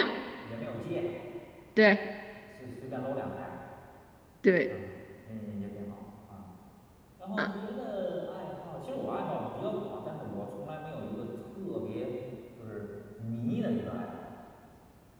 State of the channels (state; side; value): identical; both; correlation 1.00